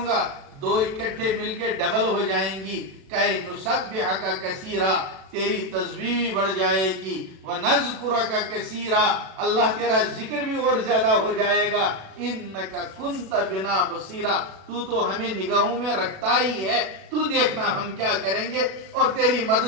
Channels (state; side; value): late; left; 37 ms